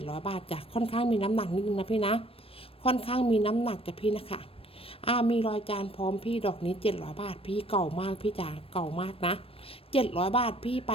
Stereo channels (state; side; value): late; right; 0.28 ms